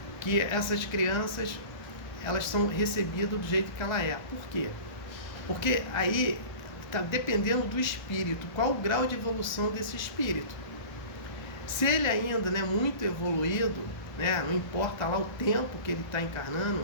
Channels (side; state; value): right; late; 1.3 ms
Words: que essas crianças elas são recebidas do jeito que ela é. Por quê? Porque aí está dependendo do espírito, qual o grau de evolução desse espírito. Se ele ainda não é muito evoluído, né, não importa lá o tempo que ele está encarnando,